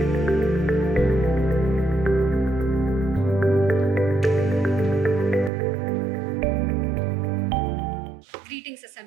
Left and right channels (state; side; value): drops out; left; at 5.5 s